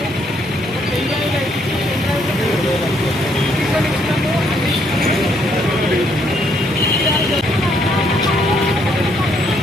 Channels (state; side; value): normal; both; correlation 0.70